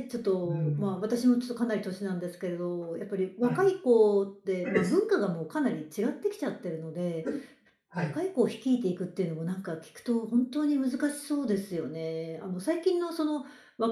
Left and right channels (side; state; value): both; identical; correlation 1.00